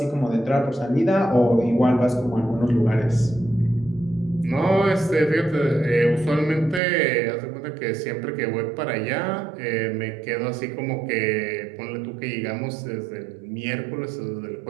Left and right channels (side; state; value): left; drops out; at 6.8 s